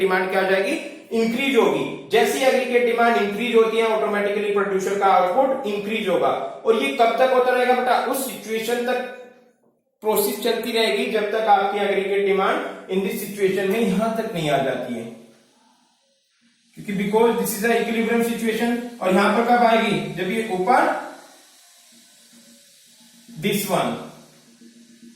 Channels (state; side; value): identical; both; correlation 1.00